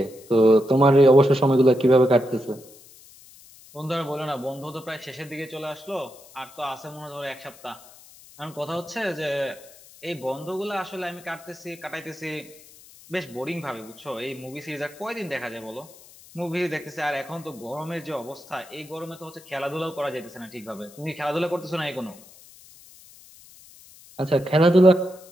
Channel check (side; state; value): left; noise; hiss, 22 dB below the sound